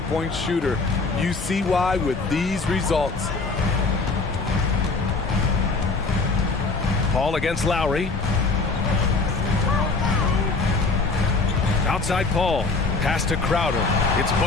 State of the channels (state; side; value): quieter; right; 3.9 dB